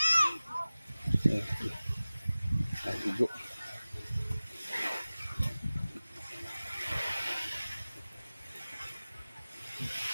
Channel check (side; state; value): both; inverted; correlation -0.97